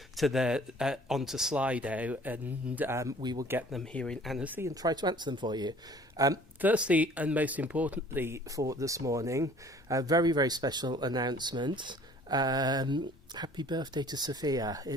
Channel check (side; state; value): both; normal; correlation 0.52